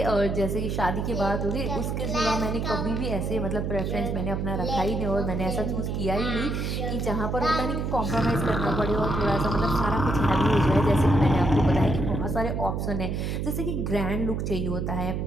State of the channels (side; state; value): right; noise; hum, 1 dB below the sound